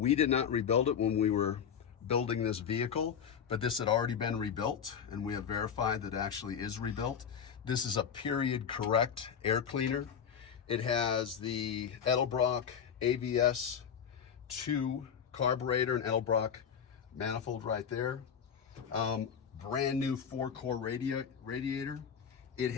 did not rebuild it when we were building this vehicle, but this had already been rebuilt and we have verified that it actually is rebuilt. This is a period correct air cleaner. It has the Edelbrock AVS 2 carburetor and Edelbrock manifold right there. Brand new 4-core radiator. It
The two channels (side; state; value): right; quieter; 7.7 dB